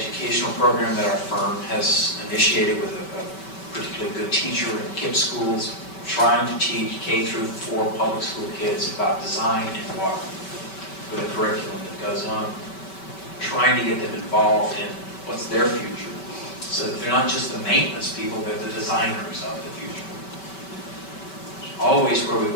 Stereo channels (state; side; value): late; right; 5.2 ms